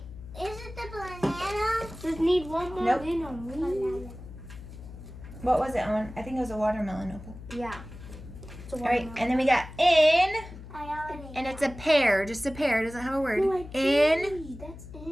is it the banana? Just need one more Nope. banana. What was it on? I think it was a watermelon opal. Yeah. All right. And then we got in. I already. And it's a pear. Just a pear. It doesn't have a word. No, In. That's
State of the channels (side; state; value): left; noise; hum, 14 dB below the sound